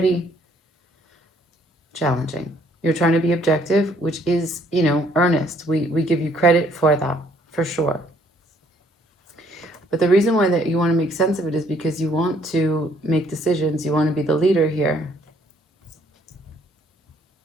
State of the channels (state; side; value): normal; both; correlation 0.64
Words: challenging. You're trying to be objective, which is, earnest. We give you credit for that, for sure. But the reason why that you want to make sense of it is because you want to make decisions. You want to be the leader here.